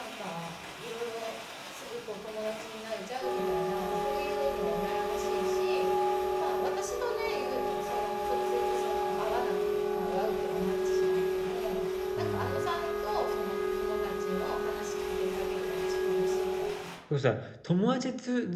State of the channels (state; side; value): identical; both; correlation 1.00